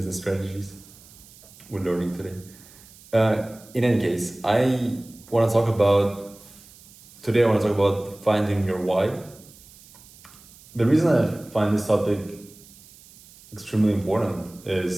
strategies we're learning today. In any case, want to talk about today. I want to talk about finding your why. The reason I find this topic extremely important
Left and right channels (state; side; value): noise; right; hiss, 23 dB below the sound